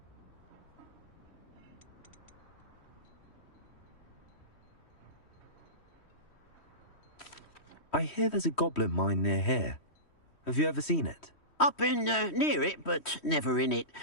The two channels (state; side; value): late; right; 3.1 ms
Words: I hear there's a goblin mine near here. Have you ever seen it? I've been near it, but never in it.